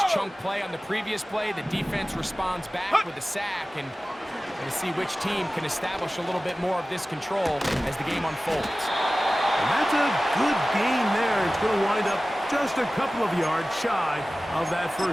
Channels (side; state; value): both; normal; correlation 0.97